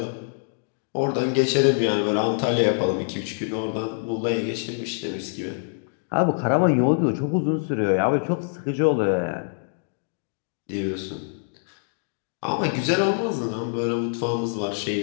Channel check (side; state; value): right; silent; digital silence